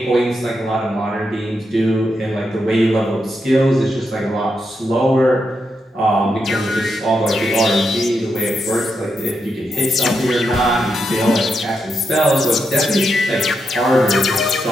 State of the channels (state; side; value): normal; both; correlation 0.84